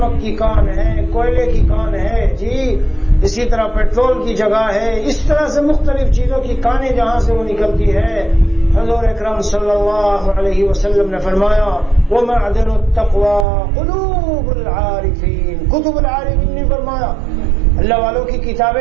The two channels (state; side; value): drops out; left; at 13.5 s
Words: کی کان ہے، کوئلے کی کان ہے، جی اسی طرح پیٹرول کی جگہ ہے. اس طرح سے مختلف چیزوں کی کانیں جہاں سے وہ نکلتی ہے. حضور اکرم صلی اللہ علیہ وسلم نے فرمایا ومعدن التقوى قلوب العارفین. کتب العارفین نہیں فرمایا، اللہ والوں کی